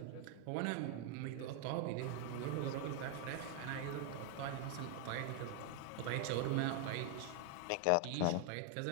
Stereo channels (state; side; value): different; both; correlation 0.01